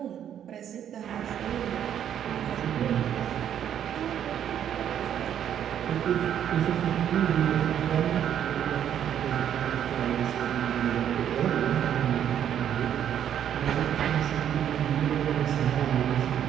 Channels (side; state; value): left; quieter; 9.7 dB